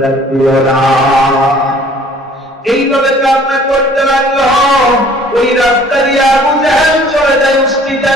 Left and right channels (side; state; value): both; normal; correlation 0.54